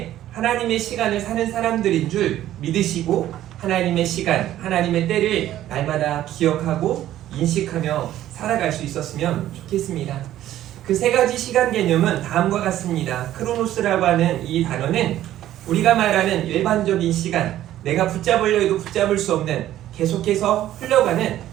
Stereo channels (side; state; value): left; quieter; 13.0 dB